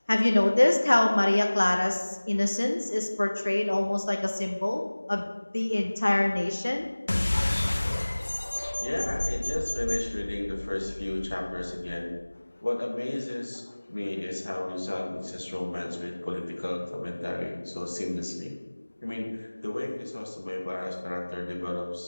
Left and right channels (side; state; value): both; inverted; correlation -1.00